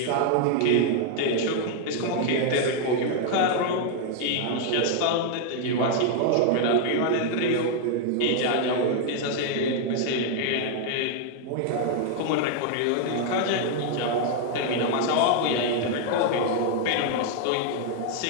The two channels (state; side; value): different; both; correlation 0.00